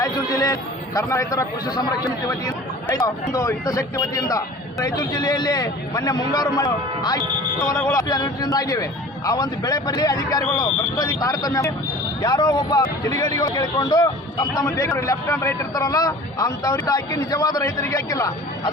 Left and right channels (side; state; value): both; normal; correlation 0.42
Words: ಜಿಲ್ಲೆ ಕರ್ನಾಟಕ ರೈತರ ಕೃಷಿ ಸಂರಕ್ಷಣೆ ವತಿಯಿಂದ ಒಂದು ಹಿತಾಸಕ್ತಿ ವತಿಯಿಂದ ರಾಯಚೂರು ಜಿಲ್ಲೆಯಲ್ಲಿ ಮೊನ್ನೆ ಮುಂಗಾರು ಹೊಲಗಳು ಆ ಒಂದು ಬೆಳೆ ಪರಿಹಾರ ಅಧಿಕಾರಿಗಳು ಭ್ರಷ್ಟಾಚಾರ ತಾರತಮ್ಯ ಯಾರೋ ಒಬ್ಬ ಕಿಡಿಗೇಡಿಗಳು ಕೇಳಿಕೊಂಡು ತಮ್ಮ ಬೇಗ ಲೆಫ್ಟ್ ಹ್ಯಾಂಡ್ ರೈಟ್ ಇರ್ತಾರಲ್ಲ ಅಂತವ್ರಿಗೆ ಹಾಕಿ ನಿಜವಾದ ರೈತರಿಗೆ ಹಾಕಿಲ್ಲ.